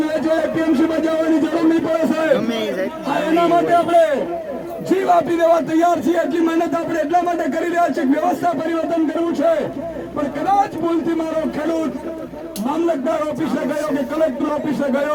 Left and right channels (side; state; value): both; identical; correlation 1.00